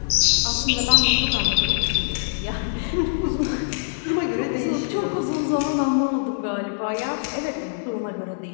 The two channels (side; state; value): right; silent; 63 dB below the other